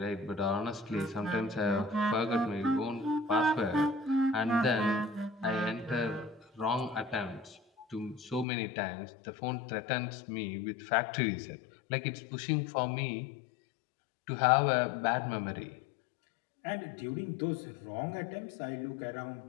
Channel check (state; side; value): drops out; right; at 8.5 s